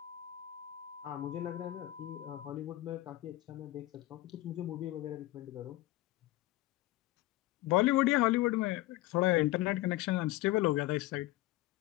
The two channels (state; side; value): quieter; right; 17.2 dB